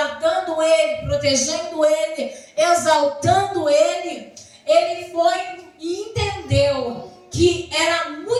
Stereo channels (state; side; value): identical; both; correlation 1.00